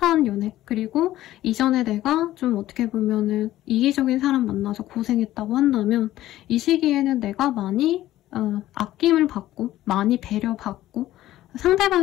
연애, 그리고 이전에 내가 좀 어떻게 보면은 이기적인 사람 만나서 고생했다고 한다면 이 시기에는 내가 많이 아낌을 받고 많이 배려받고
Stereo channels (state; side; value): quieter; right; 14.6 dB